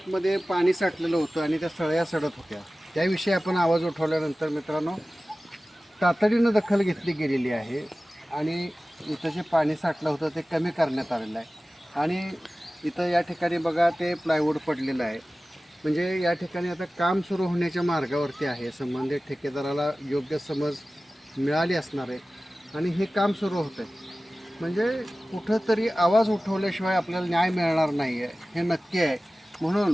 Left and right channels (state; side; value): normal; both; correlation 0.96